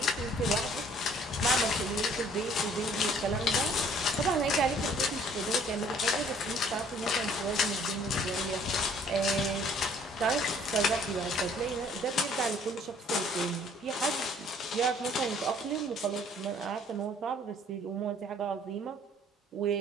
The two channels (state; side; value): normal; both; correlation 0.58